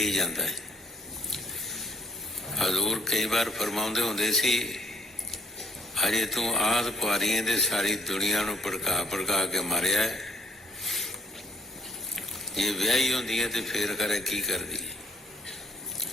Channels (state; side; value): normal; both; correlation 0.58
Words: ਜਾਂਦਾ ਹੈ। ਹਜ਼ੂਰ ਕਈ ਵਾਰ ਫਰਮਾਉਂਦੇ ਹੁੰਦੇ ਸੀ, ਅਜੇ ਤੂੰ ਆਦਿ ਕੁਆਰੀਆਂ ਦੇ ਸਾਰੀ ਦੁਨੀਆ ਨੂੰ ਭੜਕਾ ਕੇ ਮਾਰਿਆ ਹੈ। ਜੇ ਵਿਆਹੀ ਹੁੰਦੀ ਹੈ ਤੇ ਫੇਰ ਕਰੇ ਕੀ ਕਰਦੀ ਹੈ?